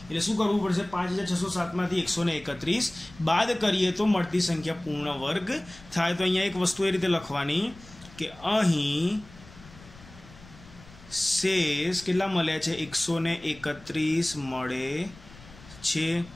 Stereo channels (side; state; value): left; noise; rumble, 21 dB below the sound